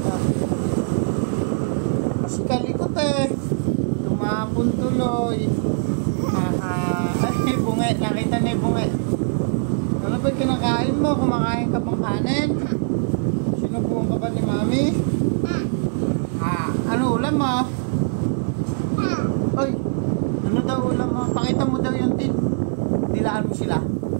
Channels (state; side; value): silent; left; 64 dB below the other